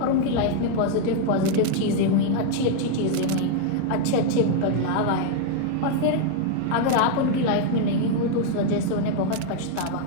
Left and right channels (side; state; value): both; different; correlation 0.00